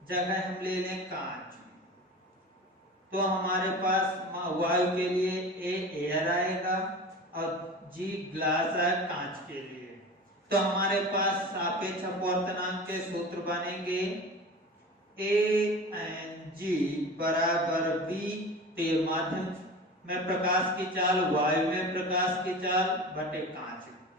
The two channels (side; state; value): both; normal; correlation 0.34